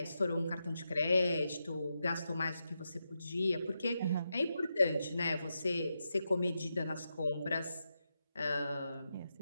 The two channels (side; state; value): both; inverted; correlation -0.87